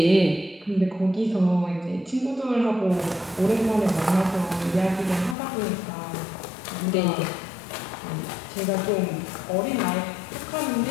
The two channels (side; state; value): right; drops out; at 5.4 s